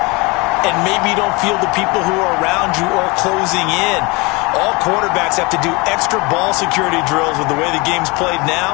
and maybe you don't feel the people who are around you or closing in. All quarterbacks have to do extra ball security drills with the way the game's played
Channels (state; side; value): quieter; right; 26.3 dB